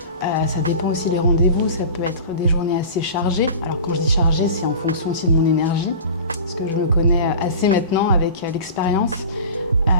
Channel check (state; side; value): inverted; both; correlation -0.36